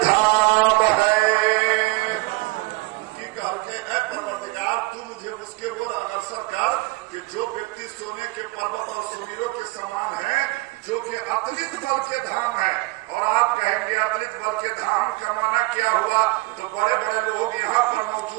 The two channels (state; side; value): quieter; left; 23.2 dB